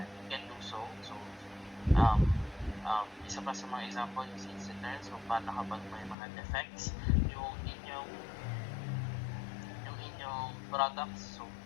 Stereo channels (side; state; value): right; drops out; at 6.2 s